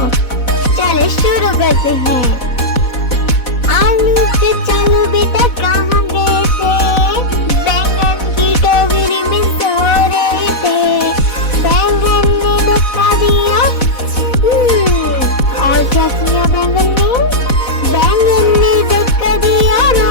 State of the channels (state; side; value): late; right; 4.1 ms